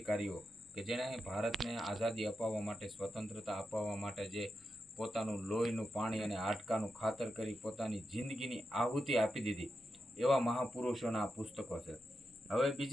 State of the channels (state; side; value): normal; both; correlation 0.88